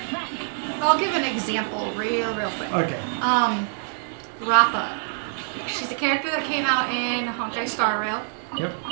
I'll give an example real quick. Okay. Rappa. She's a character that came out in Honkai Star Rail. Yep.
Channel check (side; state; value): left; silent; digital silence